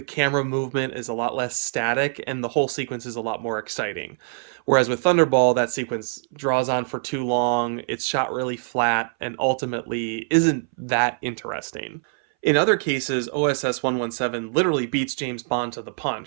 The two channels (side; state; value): left; silent; 61 dB below the other